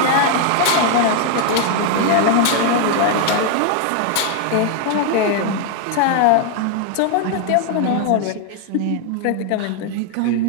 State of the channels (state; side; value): different; both; correlation 0.00